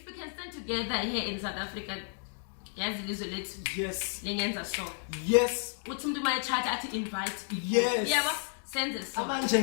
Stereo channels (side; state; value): right; silent; 56 dB below the other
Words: we can stand together here in South Africa, yazi lizwe lethu Yes. lengenza so. Yes. Uthi umuntu mayechatha athi invite people. Yes. Yebo, senze so. Abanje